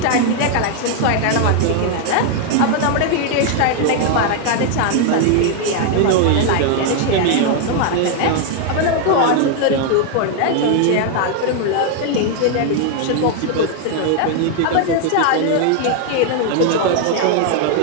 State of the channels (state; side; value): different; both; correlation 0.00